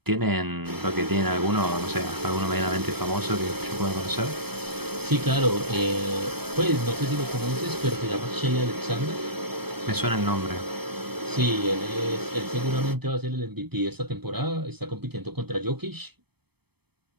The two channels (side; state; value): left; late; 0.97 ms